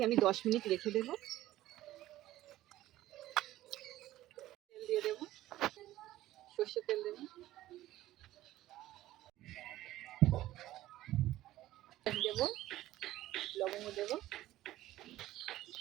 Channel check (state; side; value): quieter; left; 15.1 dB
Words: আমি 10 মিনিট রেখে দেবো। তেল দিয়ে দেবো, সর্ষের তেল দেবো, দেবো লবঙ্গ, দেবো